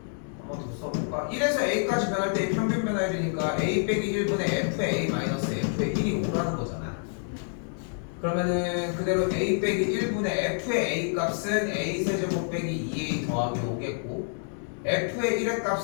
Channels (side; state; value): right; silent; 59 dB below the other